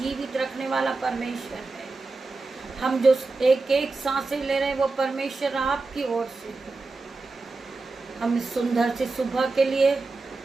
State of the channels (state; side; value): quieter; left; 3.6 dB